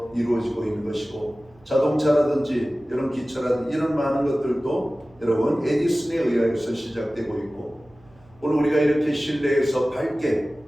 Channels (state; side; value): noise; right; hum, 28 dB below the sound